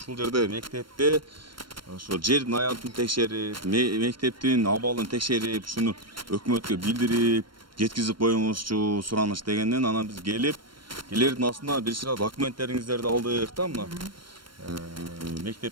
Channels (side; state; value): left; late; 0.72 ms